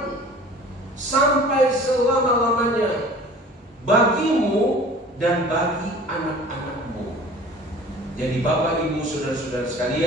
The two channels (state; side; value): normal; both; correlation 0.45